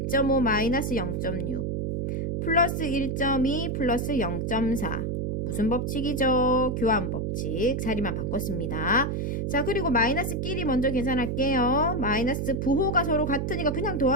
마이너스 0.6 플러스 1.2 플러스 0.4. 무슨 법칙이죠? 교환 법칙. 자리만 바꿨습니다. 자, 그리고 마이너스끼리 먼저 계산할게요. 마이너스 부호가 서로 같으니까 그냥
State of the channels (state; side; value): noise; right; hum, 1 dB below the sound